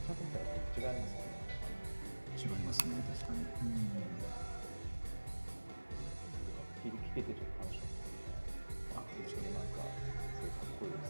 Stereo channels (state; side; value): inverted; both; correlation -1.00